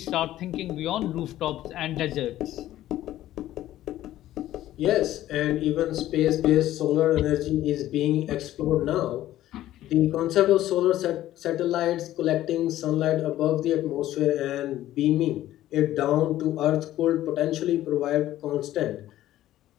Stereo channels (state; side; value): quieter; right; 13.9 dB